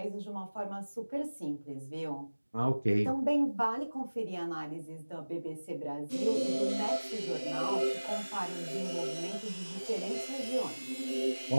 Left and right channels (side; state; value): both; inverted; correlation -1.00